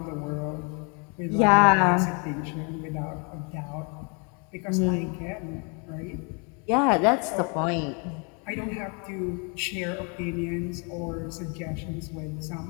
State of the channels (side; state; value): right; quieter; 34.9 dB